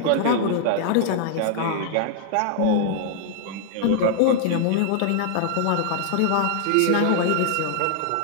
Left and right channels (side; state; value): both; different; correlation -0.01